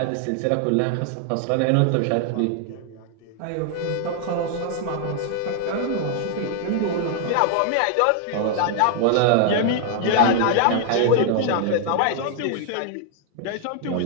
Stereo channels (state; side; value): different; both; correlation 0.00